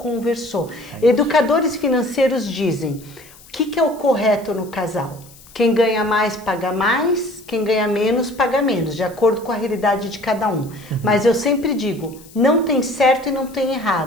Educadores financeiros dizem, o que é o correto no casal? Quem ganha mais, paga mais. Quem ganha menos, paga menos. De acordo com a realidade de cada um. Mas eu sempre digo, não tem certo e não tem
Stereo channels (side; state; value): left; noise; hiss, 23 dB below the sound